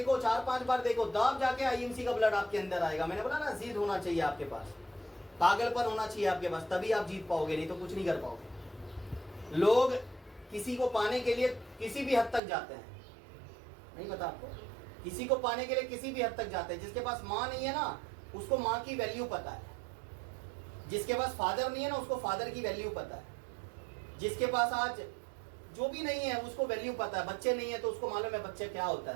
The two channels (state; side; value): drops out; left; at 12.4 s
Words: 4-5 बार देखो, तब जाके आईएमसी का ब्लड आपके अंदर आएगा। मैंने बोला ना, जिद होना चाहिए आपके पास, पागलपन होना चाहिए आपके पास, तभी आप जीत पाओगे, नहीं तो कुछ नहीं कर पाओगे। लोग किसी को पाने के लिए किसी भी हद तक जाते हैं, नहीं पता आपको? किसी को पाने के लिए किसी भी हद तक जाते हैं। जिसके पास माँ नहीं है ना, उसको माँ की वैल्यू पता है। जिसके पास फादर नहीं है ना उसको फादर की वैल्यू पता है, जिसके पास आज जो भी नहीं है उसको वैल्यू पता है, बच्चे नहीं है तो उसको मालूम है बच्चे क्या होता